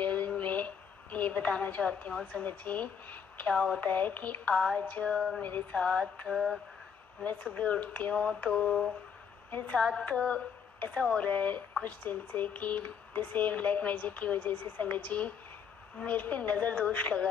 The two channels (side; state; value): right; quieter; 7.0 dB